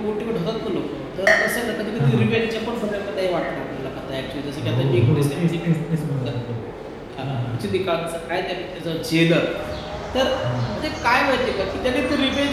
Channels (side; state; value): both; identical; correlation 1.00